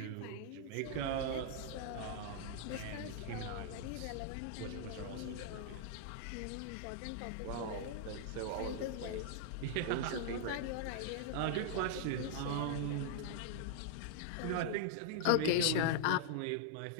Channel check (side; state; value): both; different; correlation -0.01